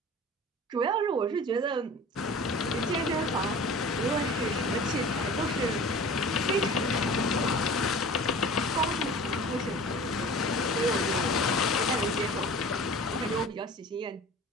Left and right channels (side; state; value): both; normal; correlation 0.41